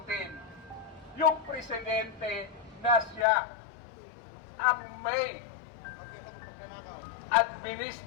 yung presidente na siya ang may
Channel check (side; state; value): right; drops out; at 3.2 s